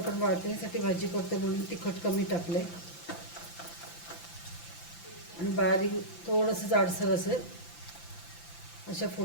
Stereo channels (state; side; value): late; right; 5.9 ms